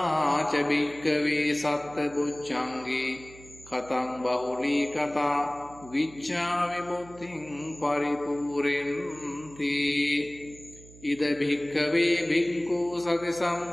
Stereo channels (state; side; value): noise; right; hum, 20 dB below the sound